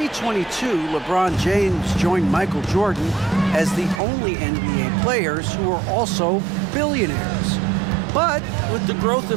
LeBron James joined Michael Jordan as the only NBA players who are also billionaires. But with the growth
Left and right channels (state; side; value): drops out; left; at 4.0 s